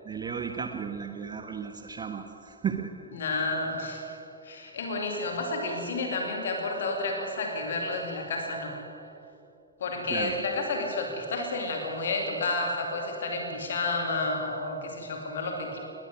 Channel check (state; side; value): inverted; both; correlation -0.34